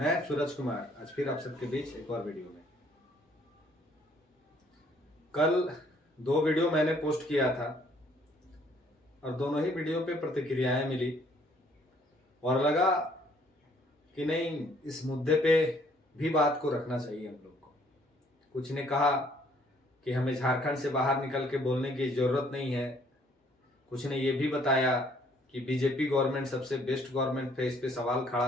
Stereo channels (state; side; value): normal; both; correlation 0.63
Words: सूरज कुमार आज फिर आप सबके बीच एक और वीडियो में। कल 2 वीडियो मैंने पोस्ट किया था और दोनों ही वीडियो पे प्रतिक्रियाएं मिली और लगा कि नहीं, इस मुद्दे पे भी बात को रखना चाहिए हम लोग को। कुछ ने कहा कि हमें झारखंड से बाहर निकल के बोलने की जरूरत नहीं है। कुछ ने ये भी बताया कि बीजेपी गवर्नमेंट सबसे बेस्ट गवर्नमेंट है, इस पे सवाल खड़ा